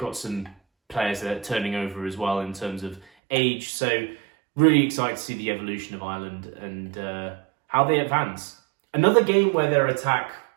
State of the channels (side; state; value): left; drops out; at 3.1 s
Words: some players that are turning over as well in terms of age. So really excited to see the evolution of Ireland and how they advance. Another game where their attack